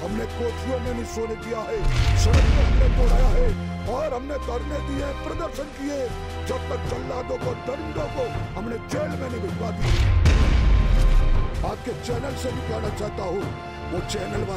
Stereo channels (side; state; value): both; identical; correlation 1.00